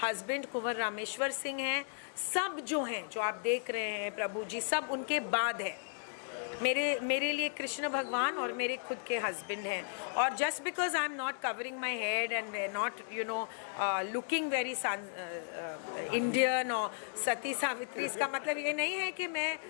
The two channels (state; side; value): silent; right; digital silence